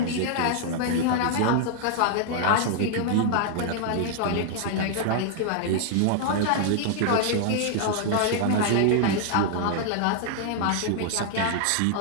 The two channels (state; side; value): different; both; correlation -0.01